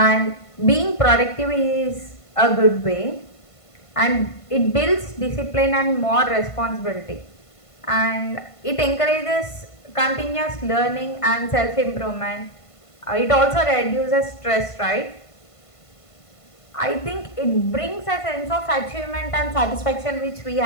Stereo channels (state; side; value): late; right; 1.5 ms